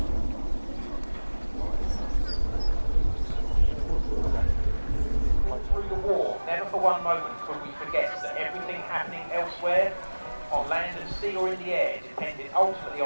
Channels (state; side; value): inverted; both; correlation -1.00